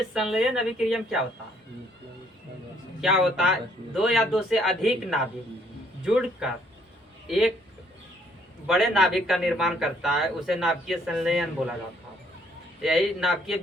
संलयन अभिक्रिया में क्या होता है? क्या होता है? दो या दो से अधिक नाभिक जुड़कर एक बड़े नाभिक का निर्माण करता है, उसे नाभिकीय संलयन बोला जाता है। यही नाभिकीय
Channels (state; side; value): normal; both; correlation 0.65